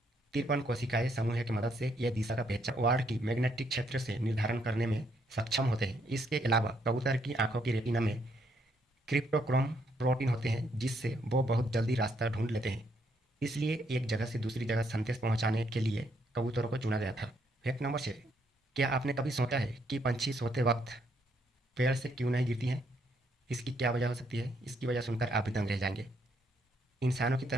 53 कोशिकाएं समूह की मदद से यह दिशा का पहचान वार्ड की मैग्नेटिक क्षेत्र से निर्धारण करने में सक्षम होते हैं। इसके अलावा कबूतर की आंखों की रेटिना में क्रिप्टोक्रोम प्रोटीन होते हैं, जिससे वो बहुत जल्दी रास्ता ढूंढ लेते हैं। इसलिए एक जगह से दूसरी जगह संदेश पहुंचाने के लिए कबूतरों को चुना गया था। Fact number 6। क्या आपने कभी सोचा है कि पंछी सोते वक्त पेड़ से क्यों नहीं गिरती हैं? इसकी क्या वजह हो सकती है? इसकी वजह सुनकर आप भी दंग रह जाएंगे। इंसानों की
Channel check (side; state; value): both; normal; correlation 0.73